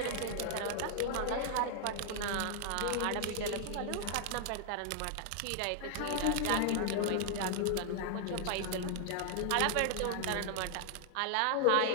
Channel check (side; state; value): both; different; correlation 0.00